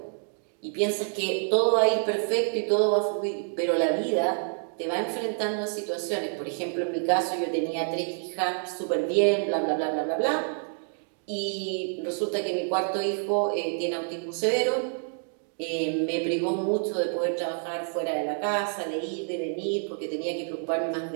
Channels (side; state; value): left; silent; 59 dB below the other